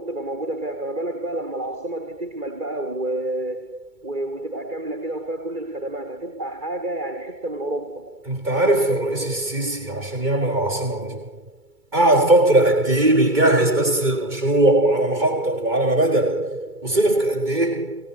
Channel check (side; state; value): left; late; 2.3 ms